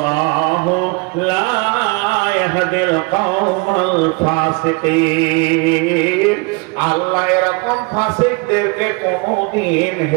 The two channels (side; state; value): left; quieter; 28.5 dB